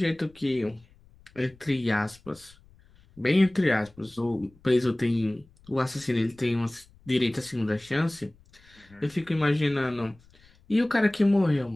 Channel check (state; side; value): noise; left; rumble, 28 dB below the sound